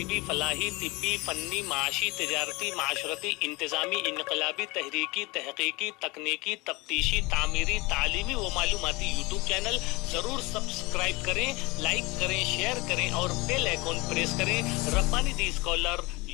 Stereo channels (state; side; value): quieter; right; 24.3 dB